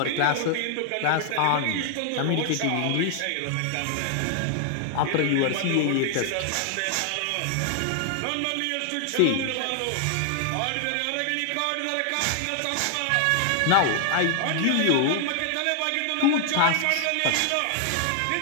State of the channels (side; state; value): both; different; correlation 0.00